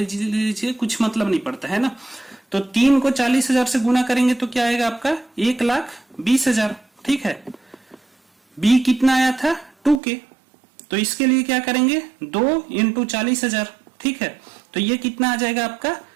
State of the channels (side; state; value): left; drops out; at 10.0 s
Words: कुछ मतलब नहीं पड़ता है ना। तो 3 को 40,000 से गुना करेंगे तो क्या आएगा आपका 1,20,000, ठीक है। b कितना आया था 2k, तो इसके लिए क्या करेंगे 2 इंटू 40,000, ठीक है। तो ये कितना आ जाएगा आपका